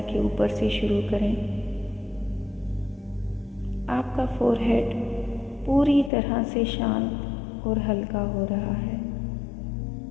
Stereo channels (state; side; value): drops out; right; at 6.1 s